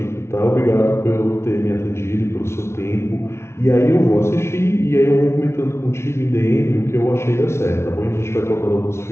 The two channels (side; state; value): right; late; 0.13 ms